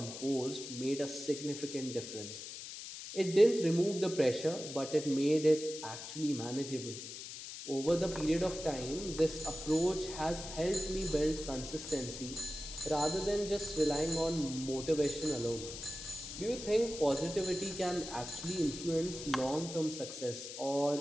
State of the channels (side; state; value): left; noise; hiss, 10 dB below the sound